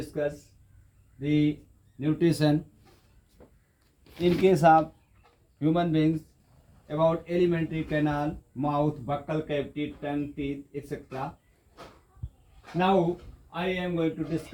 the nutrition in case of human beings about alimentary canal, mouth, buccal cavity, tongue, teeth, etc. Now I am going to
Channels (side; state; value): both; identical; correlation 1.00